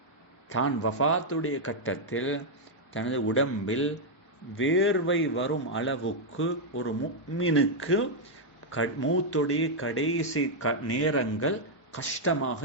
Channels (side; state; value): both; normal; correlation -0.02